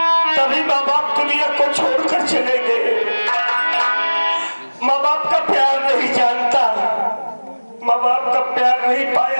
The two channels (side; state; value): both; inverted; correlation -1.00